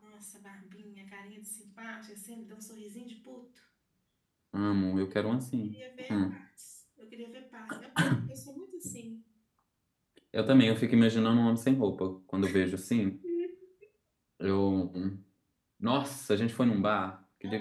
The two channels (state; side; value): identical; both; correlation 1.00